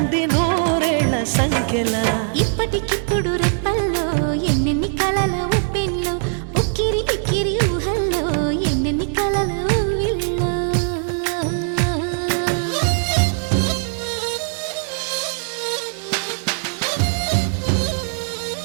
నూరేళ్ల సంఖ్యలా. ఇప్పటికిప్పుడు రెప్పల్లో ఎన్నెన్ని కలల ఉప్పెన్లో, ఉక్కిరి బిక్కిరి ఊహల్లో ఎన్నెన్ని కలల ఊవిళ్ళో.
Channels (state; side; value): silent; left; 63 dB below the other